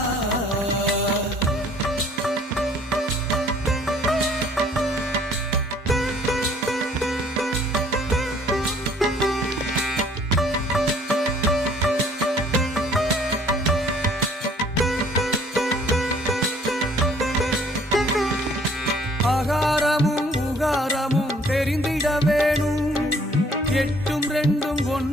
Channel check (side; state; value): both; normal; correlation 0.58